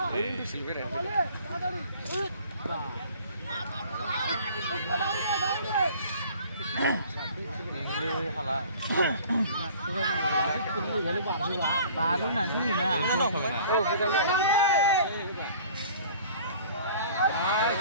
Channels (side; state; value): both; inverted; correlation -0.49